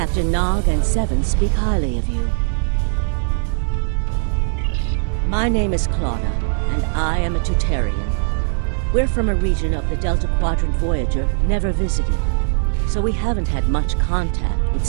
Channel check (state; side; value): silent; left; digital silence